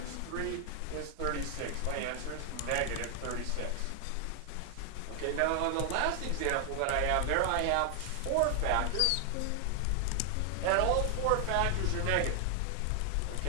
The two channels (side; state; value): both; different; correlation 0.00